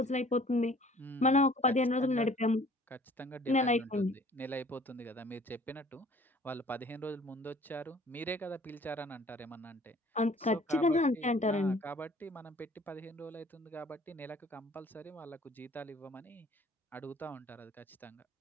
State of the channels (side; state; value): both; normal; correlation 0.53